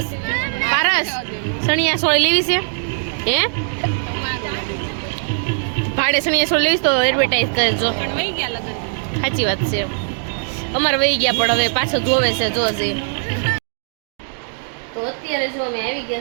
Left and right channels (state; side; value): silent; left; digital silence